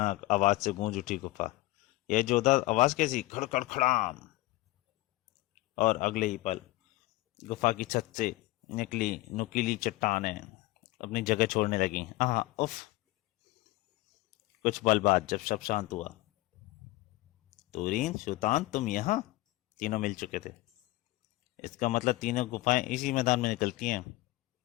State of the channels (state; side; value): quieter; right; 19.5 dB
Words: आवाज से गूंज उठी गुफा। यह जोरदार आवाज कैसी? खड़खड़ खड़ाम! और अगले ही पल गुफा की छत से निकली नुकीली चट्टानें अपनी जगह छोड़ने लगी। आह, उफ! कुछ पल बाद जब सब शांत हुआ, तुरीन, सुल्तान, तुम यहाँ? तीनों मिल चुके थे। इसका मतलब तीनों गुफाएं इसी मैदान में निकलती हैं।